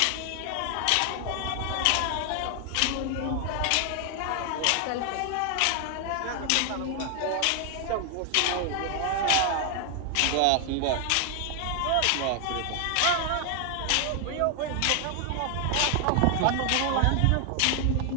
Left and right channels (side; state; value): both; different; correlation 0.00